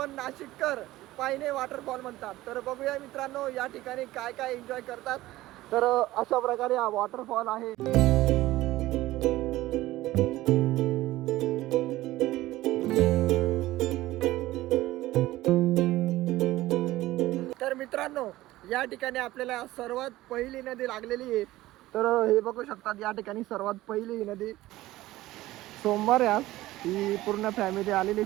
नाशिककर पायने वॉटरफॉल म्हणतात. तर बघूया मित्रांनो या ठिकाणी काय काय एन्जॉय करतात. तर अशा प्रकारे हा वॉटरफॉल आहे. तर मित्रांनो या ठिकाणी आपल्याला सर्वात पहिली नदी लागलेली आहे. तर हे बघू शकतात या ठिकाणी सर्वात पहिली ही नदी. सोमवार आज ही पूर्ण फॅमिली आलेली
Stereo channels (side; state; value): left; quieter; 16.8 dB